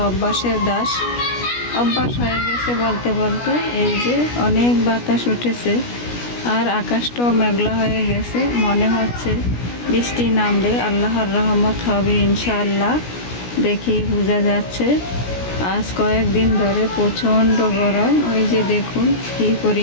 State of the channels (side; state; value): right; late; 17 ms